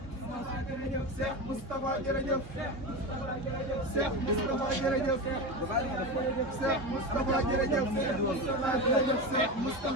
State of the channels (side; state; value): left; late; 3.8 ms